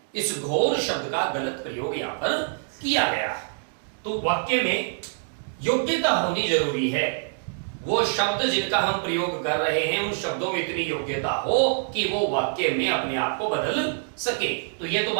इस घोर शब्द का गलत प्रयोग यहां पर किया गया है। तो वाक्य में योग्यता होनी जरूरी है। वो शब्द जिनका हम प्रयोग कर रहे हैं उन शब्दों में इतनी योग्यता हो कि वो वाक्य में अपने आप को बदल सके। तो ये तो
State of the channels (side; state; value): left; silent; digital silence